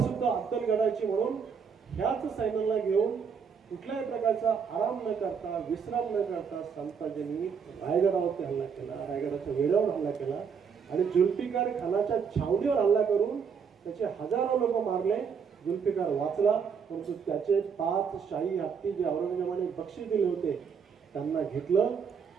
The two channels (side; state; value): left; quieter; 6.4 dB